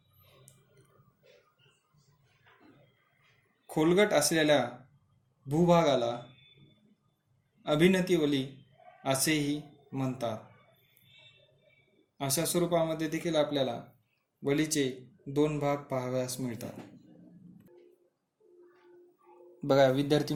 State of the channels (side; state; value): both; identical; correlation 1.00